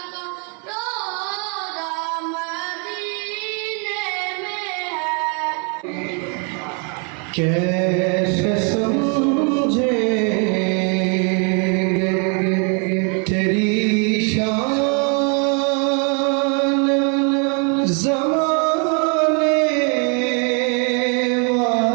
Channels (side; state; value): left; quieter; 37.0 dB